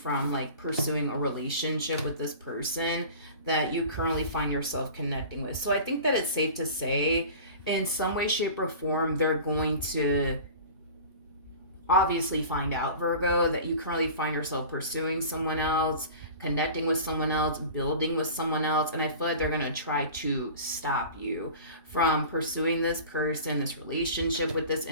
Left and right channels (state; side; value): inverted; both; correlation -0.39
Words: like pursuing a relationship with this person that you currently find yourself connecting with. So I think that it's safe to say in some way, shape, or form, they're going to obviously find out, Virgo, that you currently find yourself pursuing someone else, connecting with someone else, building with someone else. And I feel like they're going to try to stop you from pursuing this person, this relationship with this